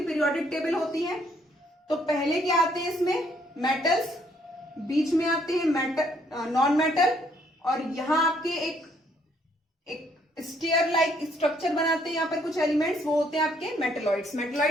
पीरियोडिक टेबल होती है। तो पहले क्या आते हैं इसमें, मेटल्स, बीच में आते हैं मेटल, नॉन मेटल, और यहां आपके एक स्टेयर लाइक स्ट्रक्चर बनाते हैं यहाँ पर कुछ एलिमेंट्स, वो होते हैं आपके मेटलॉइड्स।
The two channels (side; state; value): both; normal; correlation 0.68